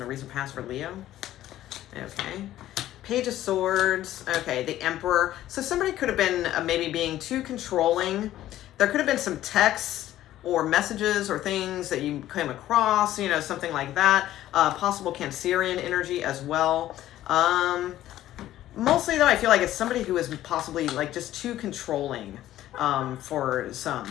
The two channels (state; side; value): quieter; right; 13.6 dB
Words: recent past for Leo? Okay. Page of Swords. Okay, the Emperor. So somebody could have been maybe being too controlling. There could have been some texts or messages or things that you came across, you know, something like that. Possible Cancerian energy as well. Mostly though, I feel like it's somebody who is possibly like just too controlling for